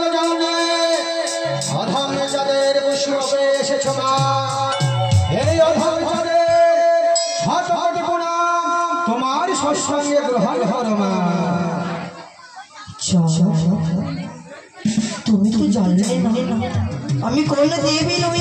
জানে অধম যাদের পুষ্পে এসেছো মা এই অধম যাদের শত কোটি প্রণাম তোমার সৎসঙ্গে গ্রহণ করো মা। তুমি তো জানলে না আমি কোন দেবী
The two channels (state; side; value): identical; both; correlation 1.00